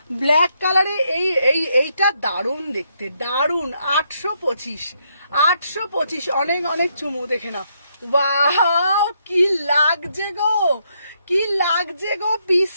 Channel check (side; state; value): both; inverted; correlation -0.76